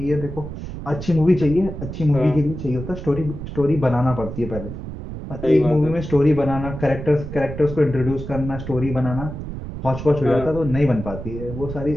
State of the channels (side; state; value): right; noise; rumble, 9 dB below the sound